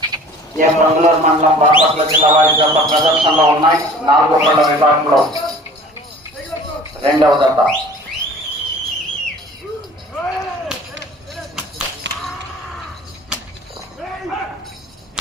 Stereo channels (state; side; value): normal; both; correlation 0.46